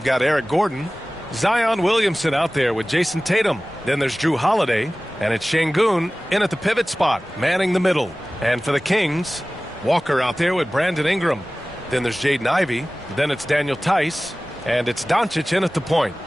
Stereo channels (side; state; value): both; normal; correlation 0.98